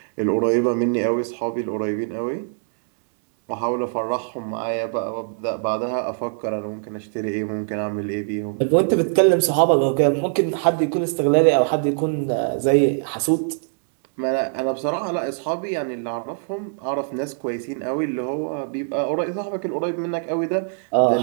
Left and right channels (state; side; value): silent; left; 64 dB below the other